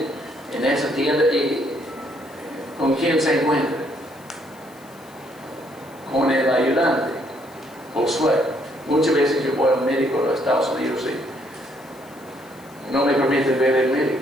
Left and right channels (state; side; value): noise; left; hiss, 26 dB below the sound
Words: en esa tienda y ¿con quién se encuentran? Con el ayudante, Josué. Muchas veces yo voy al médico de los Estados Unidos y no me permiten ver el médico.